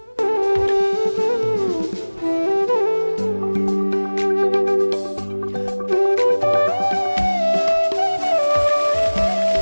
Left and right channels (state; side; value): inverted; both; correlation -1.00